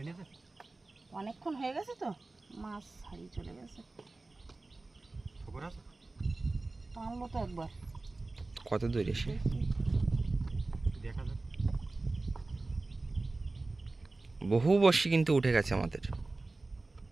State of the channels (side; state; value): left; quieter; 3.3 dB